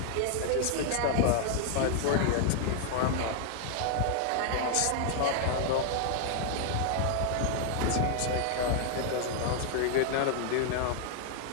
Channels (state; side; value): different; both; correlation 0.00